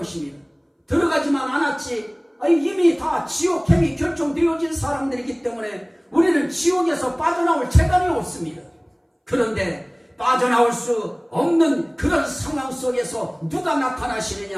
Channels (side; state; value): both; identical; correlation 1.00